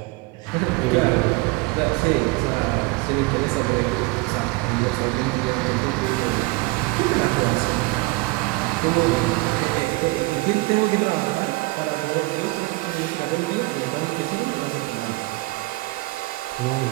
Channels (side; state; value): left; quieter; 23.2 dB